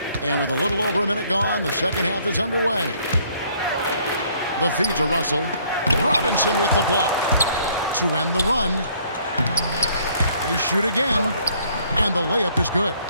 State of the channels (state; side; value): inverted; both; correlation -0.63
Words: And with a little over a minute gone, the second half is underway. The feed to Russell. Robinson with the block. To end the run. They shoot again. And the layup is good.